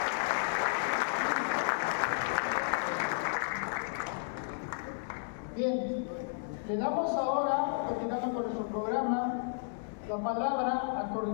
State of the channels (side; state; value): right; silent; digital silence